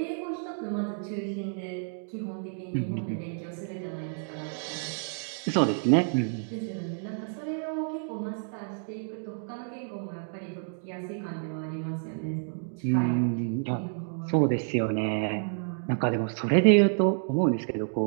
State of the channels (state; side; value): silent; left; digital silence